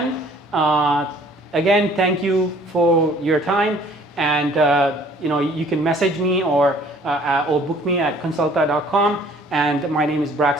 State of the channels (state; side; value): normal; both; correlation 0.55